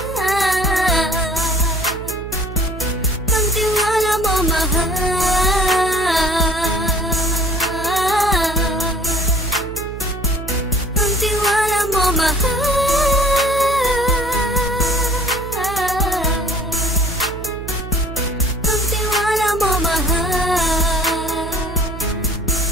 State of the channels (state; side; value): noise; right; hum, 10 dB below the sound